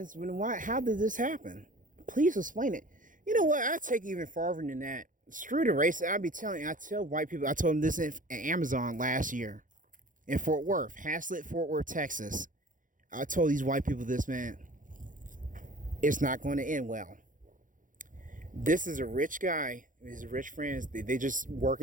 then why? How did this happen? Please explain it. You know what? I take it even farther than that. Screw the race. I tell white people. I told them this in Amazon last year in Fort Worth, Haslett, Fort Worth, Texas. I told these white people this, man. It's not going to end well. This is a rich guy. His rich friends. They just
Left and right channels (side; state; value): left; late; 0.38 ms